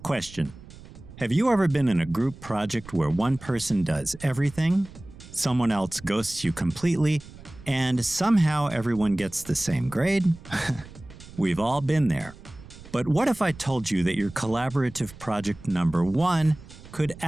question. Have you ever been in a group project where one person does everything, someone else ghosts you completely, and somehow everyone gets the same grade? We've all been there. But what if I told you that your collaborative project number 1 could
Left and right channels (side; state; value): right; noise; rumble, 18 dB below the sound